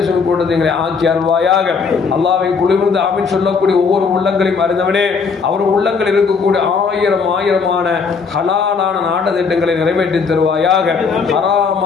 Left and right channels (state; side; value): quieter; right; 5.3 dB